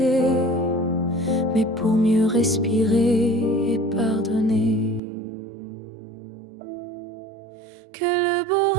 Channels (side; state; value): left; drops out; at 5.0 s